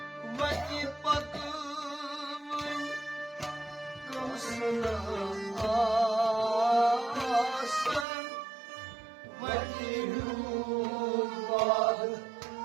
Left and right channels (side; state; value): left; drops out; at 8.1 s